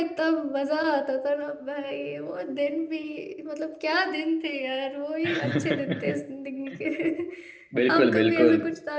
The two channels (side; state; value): both; identical; correlation 1.00